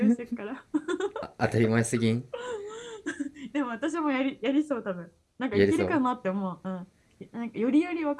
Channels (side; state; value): both; identical; correlation 1.00